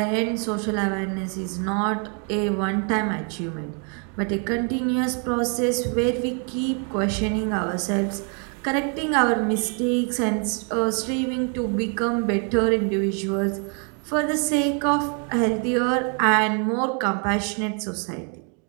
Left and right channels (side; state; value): left; quieter; 39.4 dB